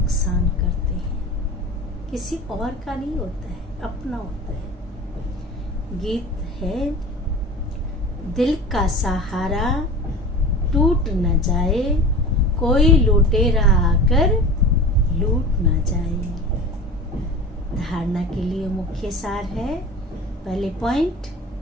करते हैं, किसी और का नहीं होता है, अपना होता है। गीत है, दिल का सहारा टूट न जाए, कोई लुटेरा आकर लूट न जाए। धारणा के लिए मुख्य सार है, पहले पॉइंट,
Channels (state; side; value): normal; both; correlation 0.35